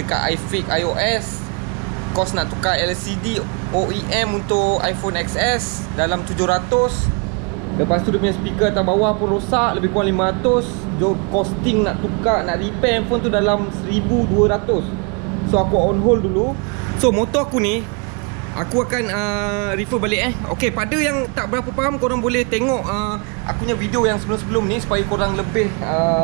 iFix iOS. Kos nak tukar LCD OEM untuk iPhone XS dalam 700. Lepas tu dia punya speaker atas bawah pun rosak, lebih kurang 500. Costing nak tukar, nak repair handphone tu dalam 1200. So aku on hold dulu. So motor aku ni aku akan refer balik Okay, pada yang tak berapa faham, korang boleh tengok aku punya video yang sebelum-sebelum ni supaya korang lebih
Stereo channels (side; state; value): left; quieter; 34.6 dB